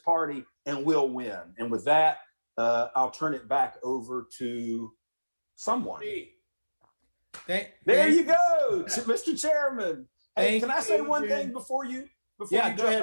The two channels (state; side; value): inverted; both; correlation -1.00